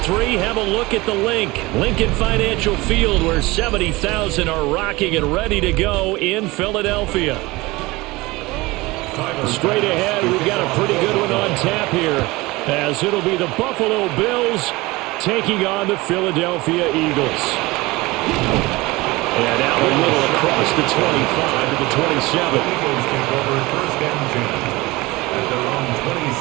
have a look at the Lincoln Financial Field, where 70,000 are rocking and ready to go in Philadelphia. Straight ahead, we've got a pretty good one on tap here, as it'll be the Buffalo Bills taking on the Philadelphia Eagles. And out a little across the 25 to the 27. The Eagles take over first and 10 at their own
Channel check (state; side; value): quieter; left; 21.5 dB